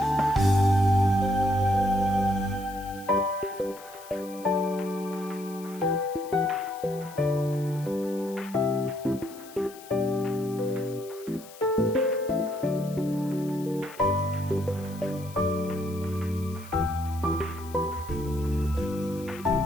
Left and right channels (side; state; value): left; noise; hiss, 19 dB below the sound